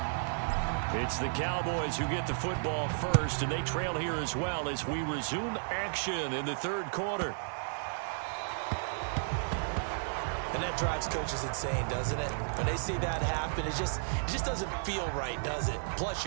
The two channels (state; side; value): silent; left; digital silence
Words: It's the Cowboys who get the football first, and they trail here as well as we resume action in the 3rd quarter. And that drives coaches insane, doesn't it? When they see that happen, it just doesn't feel right, does it? Plus,